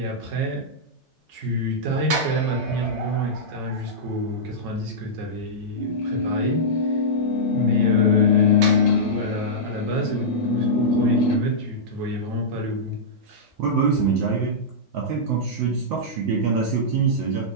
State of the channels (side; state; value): both; normal; correlation -0.12